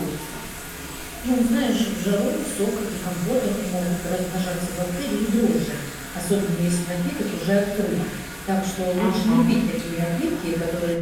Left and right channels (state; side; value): identical; both; correlation 1.00